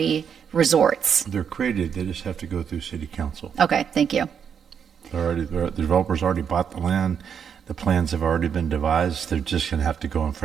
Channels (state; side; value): quieter; left; 7.5 dB